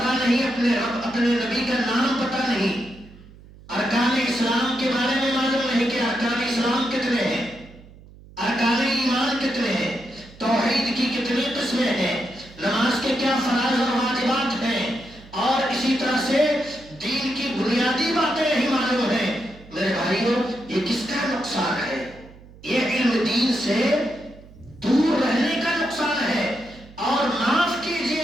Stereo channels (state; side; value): noise; right; hum, 21 dB below the sound